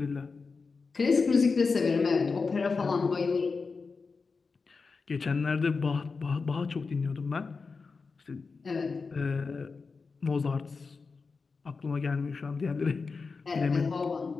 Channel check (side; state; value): right; quieter; 4.6 dB